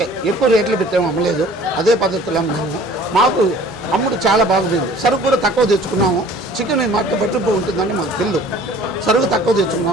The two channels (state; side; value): normal; both; correlation 0.50